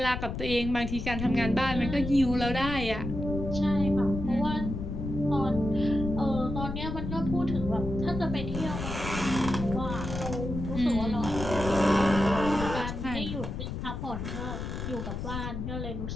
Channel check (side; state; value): left; noise; rumble, 5 dB below the sound